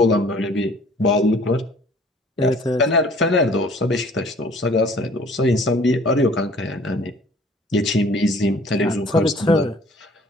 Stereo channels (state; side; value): normal; both; correlation 0.53